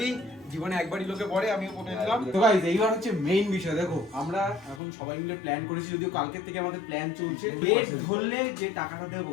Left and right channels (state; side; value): drops out; right; at 4.8 s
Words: জীবনে একবারই লোকে পরে, আমিও পরে নিলাম। তো গাইস এইবার হচ্ছে মেইন বিষয়। দেখো আমরা এখন সবাই মিলে প্ল্যান করেছি, যদিও কালকের থেকে আমাদের প্ল্যান চলছে। ডেট ধরলে যে টাকাটা দেবো